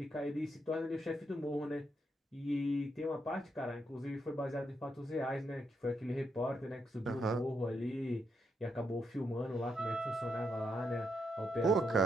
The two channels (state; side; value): normal; both; correlation 0.80